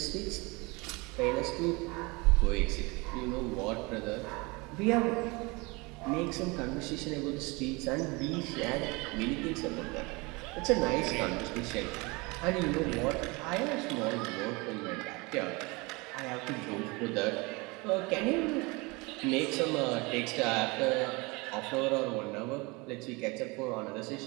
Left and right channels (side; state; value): left; quieter; 26.0 dB